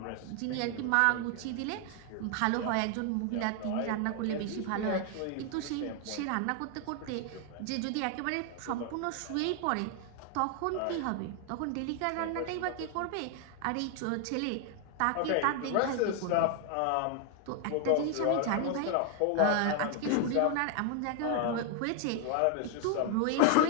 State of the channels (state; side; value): different; both; correlation 0.00